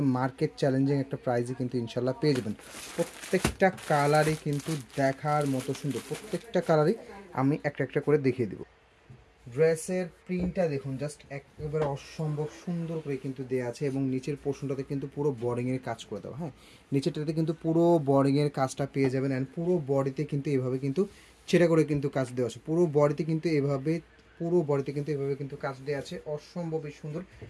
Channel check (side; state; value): both; identical; correlation 1.00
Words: মার্কেট চ্যালেঞ্জিং একটা প্রাইসে কিন্তু ইনশাল্লাহ পেয়ে যাবেন। প্রত্যেকটা কালারই কিন্তু দেখার মতো সুন্দর, প্রত্যেকটা কালারই আমি একটা একটা করে দেখিয়ে দেবো। ড্রেসের প্রিন্টটা দেখুন, জাস্ট একেবারে অসম্ভব সুন্দর করে কিন্তু দেওয়া আছে এবং নিচের পোর্শনটাতে কিন্তু পুরো বর্ডিংয়ের কাজ করে দেওয়া। হ্যাঁ, নিচেরটাতে কিন্তু পুরো বর্ডিংয়ের কাজটা পেয়ে যাবেন। অ্যান্ড পুরো বডিতে কিন্তু এভাবে কিন্তু ছেড়ে করে কিন্তু কাজ দেওয়া আছে। পুরো বডিতে কিন্তু এভাবে কিন্তু কাজ দেওয়া আছে, অসম্ভবই সুন্দর।